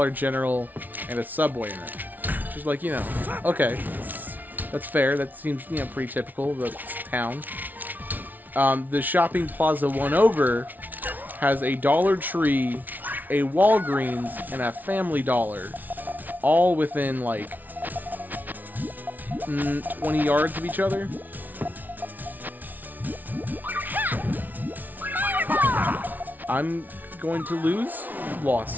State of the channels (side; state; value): left; late; 0.081 ms